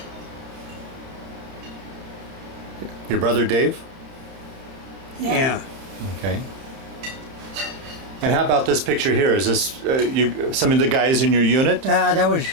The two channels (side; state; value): left; late; 30 ms